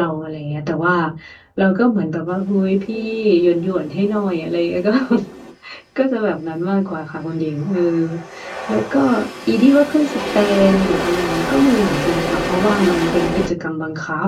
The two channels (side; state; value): both; identical; correlation 1.00